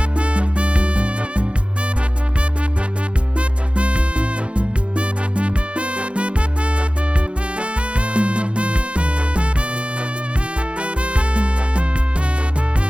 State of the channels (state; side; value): late; left; 0.059 ms